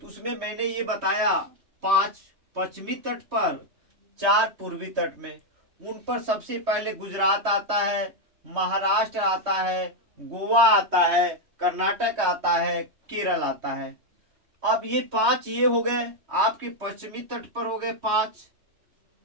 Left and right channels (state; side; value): late; left; 3.2 ms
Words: उसमें मैंने ये बताया 5 पश्चिमी तट पर, 4 पूर्वी तट में। उन पर सबसे पहले गुजरात आता है, महाराष्ट्र आता है, गोवा आता है, कर्नाटक आता है, केरल आता है। अब ये 5 ये हो गए आपके पश्चिमी तट पर हो गए 5।